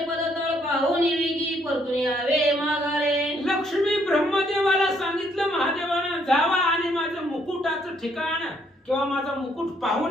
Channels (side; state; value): both; normal; correlation 0.69